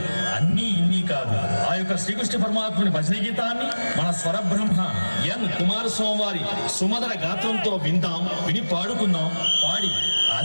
అన్నీ ఇన్ని కాదు. ఆ యొక్క శ్రీకృష్ణ పరమాత్మని భజన గీతాన్ని మన స్వరబ్రహ్మ ఎన్ కుమారస్వామి వారి సుమధుర గాత్రంతో విందాం, విని పాడుకుందాం, పాడి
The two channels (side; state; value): both; inverted; correlation -1.00